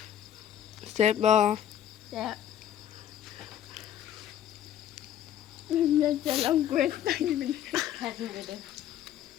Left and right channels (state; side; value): quieter; right; 10.6 dB